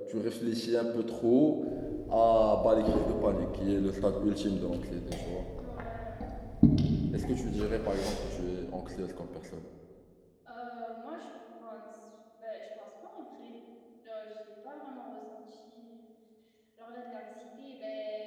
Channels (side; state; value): both; identical; correlation 1.00